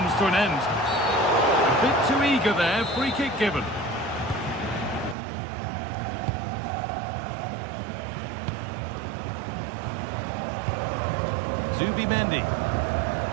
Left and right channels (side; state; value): left; drops out; at 5.2 s